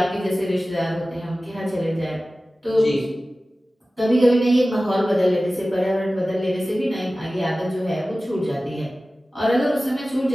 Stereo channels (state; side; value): normal; both; correlation 0.96